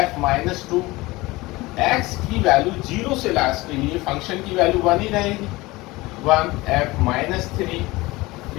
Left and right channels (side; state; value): right; quieter; 21.0 dB